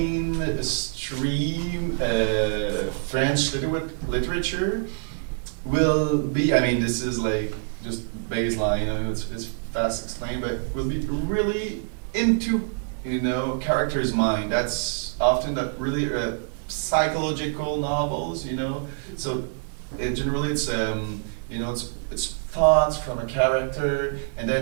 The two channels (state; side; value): silent; left; digital silence